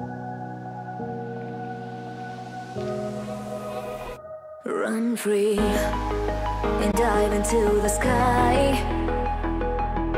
Run free and dive into the sky.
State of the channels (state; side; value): identical; both; correlation 1.00